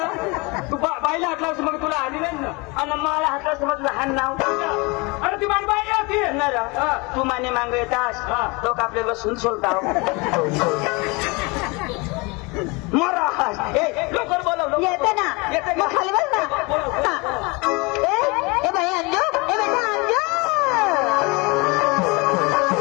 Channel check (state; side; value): quieter; right; 27.1 dB